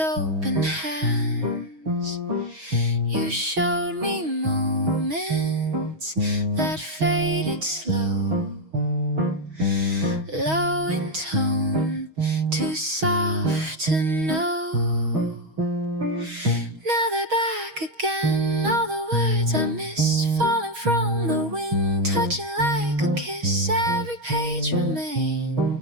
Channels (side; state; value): left; late; 6.3 ms